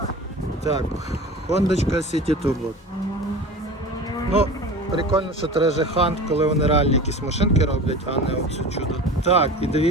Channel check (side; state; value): both; normal; correlation 0.35